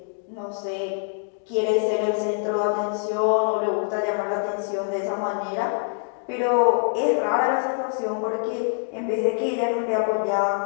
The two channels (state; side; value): silent; right; digital silence